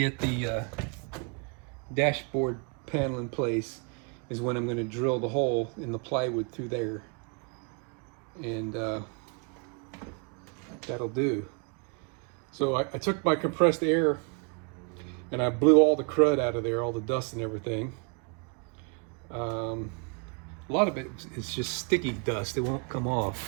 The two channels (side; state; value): left; quieter; 34.4 dB